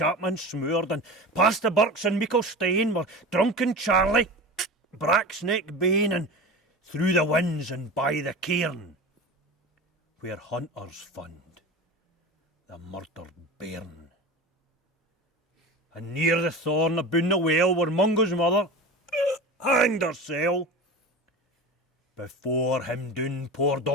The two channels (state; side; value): normal; both; correlation 0.30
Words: smoored, and past the birks and meikle stane were drunken Charlie, Bracksneck Bane, and through the winds and by the cairn, where hunters fund the murdered bairn. And near the thorn aboon the well, where Mungo's mother hanged hersel. Before him doon poured